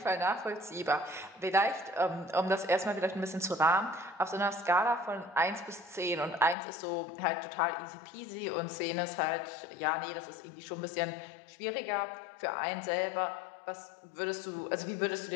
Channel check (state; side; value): drops out; right; at 6.6 s